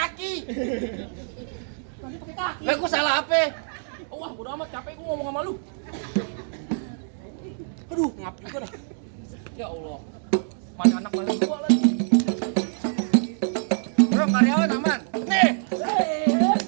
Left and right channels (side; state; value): left; silent; digital silence